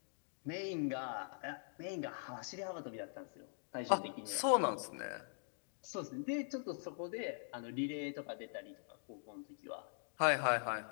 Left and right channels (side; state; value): right; silent; digital silence